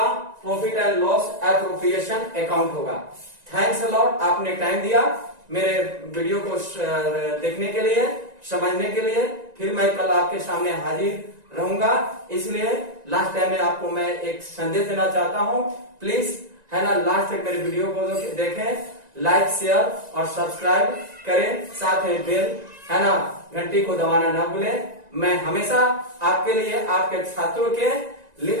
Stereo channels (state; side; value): late; left; 1.9 ms